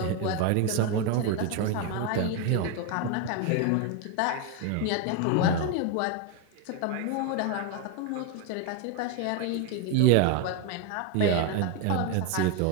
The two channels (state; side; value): different; both; correlation 0.01